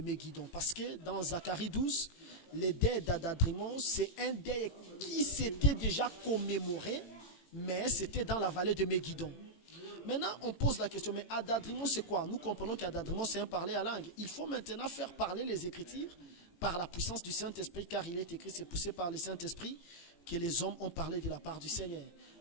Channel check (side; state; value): right; late; 18 ms